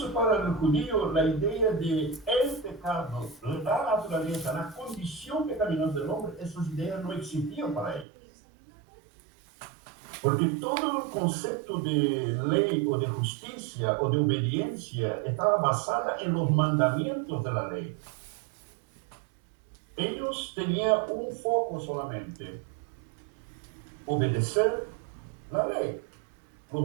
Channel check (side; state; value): left; drops out; at 8.1 s